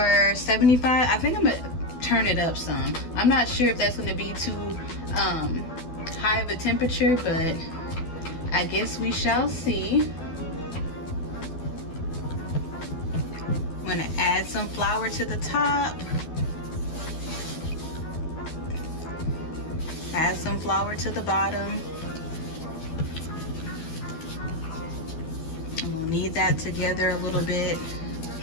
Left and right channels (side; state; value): right; late; 12 ms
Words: I think I'm gonna turn it up some. I'm not sure if that's gonna be too high of a temperature, but I guess we shall see. I'm gonna add some flour to the top. Add some flour to the bottom. And we'll knead that together a little bit.